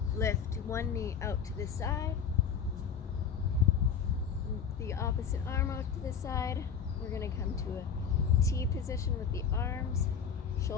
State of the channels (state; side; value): quieter; right; 6.9 dB